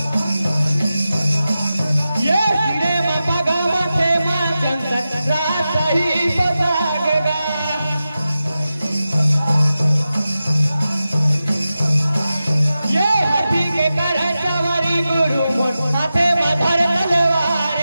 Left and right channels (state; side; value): inverted; both; correlation -0.93